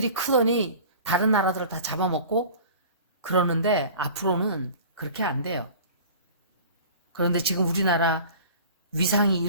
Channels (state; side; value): inverted; both; correlation -0.42